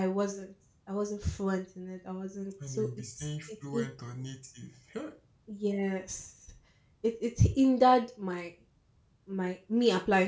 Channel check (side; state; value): both; identical; correlation 1.00